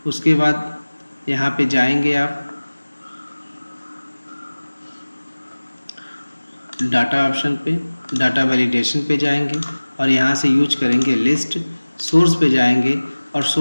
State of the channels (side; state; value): both; inverted; correlation -1.00